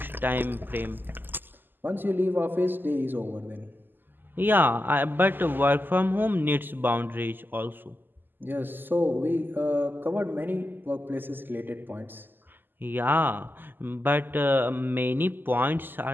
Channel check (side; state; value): left; late; 0.092 ms